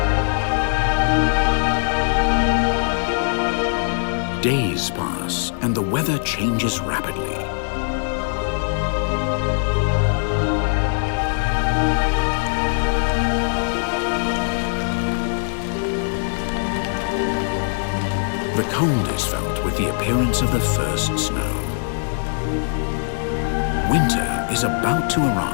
Days pass and the weather changes rapidly. The cold is felt with the appearance of the first snow. Winter is about to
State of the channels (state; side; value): silent; right; digital silence